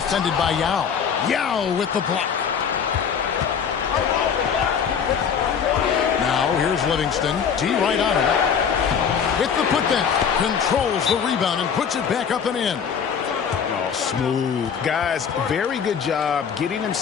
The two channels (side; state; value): right; quieter; 7.1 dB